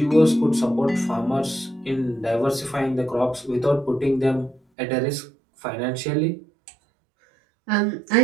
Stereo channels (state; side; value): drops out; left; at 4.6 s